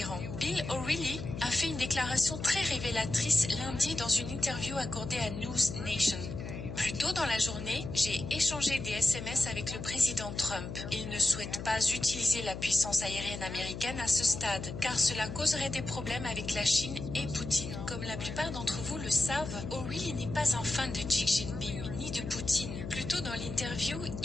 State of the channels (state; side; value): noise; left; hum, 7 dB below the sound